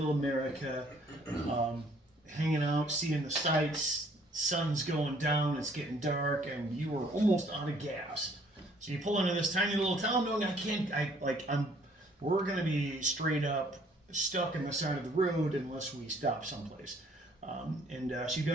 America, hanging out, seeing the sights, sun's going down, it's getting dark, and you are almost out of gas. So you pull into this tiny little town, knowing we're gonna be straight up stuck in the side of the road unless we stop someplace. So you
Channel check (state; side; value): normal; both; correlation 0.61